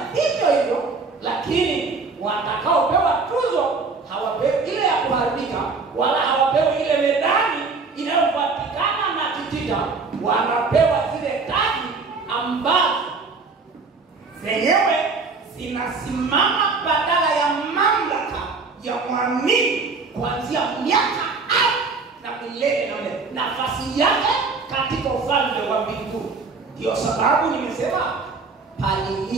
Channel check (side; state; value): left; quieter; 4.3 dB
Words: hivyo hivyo, lakini watakaopewa tuzo hawapewi ile ya kuharibika, wala hawapewi ile medali inayopatikana na kitita. Wanapewa zile taji ambazo zenyewe zinasimama badala ya mamlaka ya mwamini kuanzia miaka na milele na milele, nafasi yake katika ufalme wa mbinguni. Ndio sababu nimesema